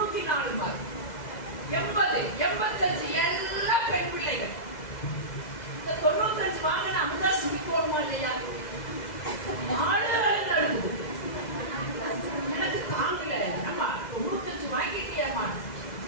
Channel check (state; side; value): late; right; 2.0 ms